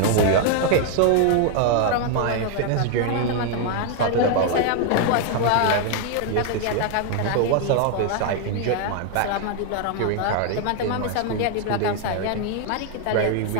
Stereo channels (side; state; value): both; different; correlation 0.00